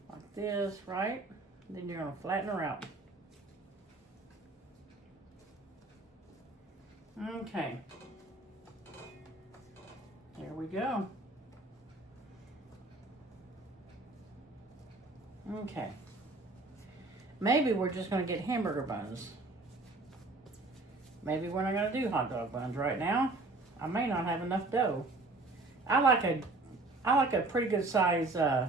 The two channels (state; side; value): quieter; left; 3.2 dB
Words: like this, right? Then you're going to flatten her out. Okay. There we go. Okay. Maybe we're just going to get hamburger buns. Maybe we're not going to do hot dog buns right now. I may not have enough dough. I like a pretty good size